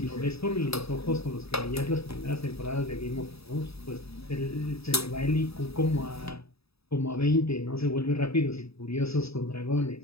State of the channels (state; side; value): late; right; 0.77 ms